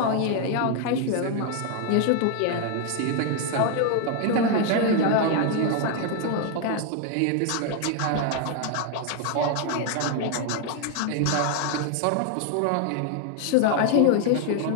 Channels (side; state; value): both; different; correlation 0.00